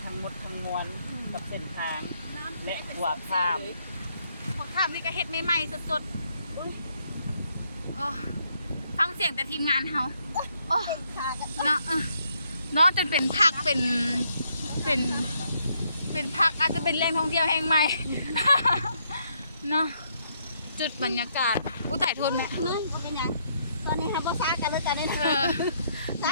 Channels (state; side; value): inverted; both; correlation -0.73